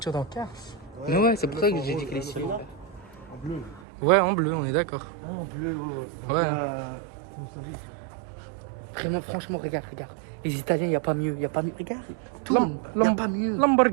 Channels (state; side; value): drops out; left; at 3.9 s